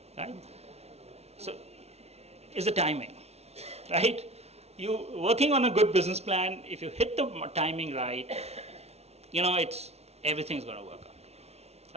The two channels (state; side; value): late; left; 0.31 ms